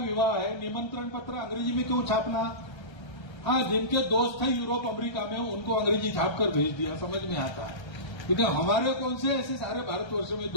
है, निमंत्रण पत्र अंग्रेजी में क्यों छापना? हाँ, जिनके दोस्त हैं यूरोप अमेरिका में, उनको अंग्रेजी छाप कर भेज दिया, समझ में आता है। लेकिन हमारे कौन से ऐसे सारे भारतवर्ष में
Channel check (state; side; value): late; right; 1.3 ms